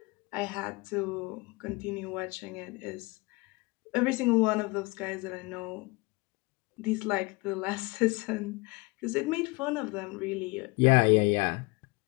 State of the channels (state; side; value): quieter; right; 25.9 dB